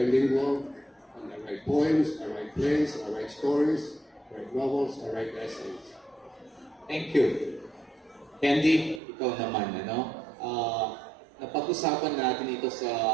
and I write poems, I write plays, I write stories, I write novels, I write essays. Thank you. Candy, ikaw naman, napag-usapan natin ito sa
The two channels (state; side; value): drops out; left; at 9.0 s